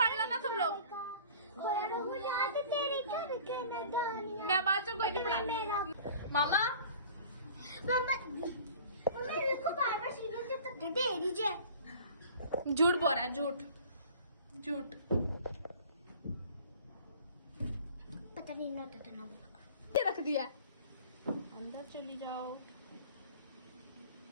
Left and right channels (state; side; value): inverted; both; correlation -0.46